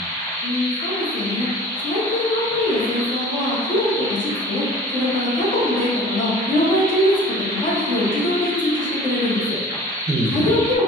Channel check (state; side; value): normal; both; correlation 0.44